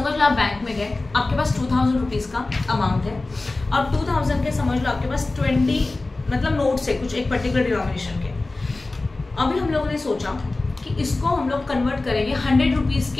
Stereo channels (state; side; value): quieter; right; 3.2 dB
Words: लो, आप बैंक में गए, आपके पास 2000 रुपीज का अमाउंट है, और 2000 के समझ लो आपके पास 20 मतलब नोट्स है कुछ एक पर्टिकुलर डिनोमिनेशन के। अभी हम लोगों ने सोचा कि इसको हम लोग कन्वर्ट करेंगे 100 रुपीज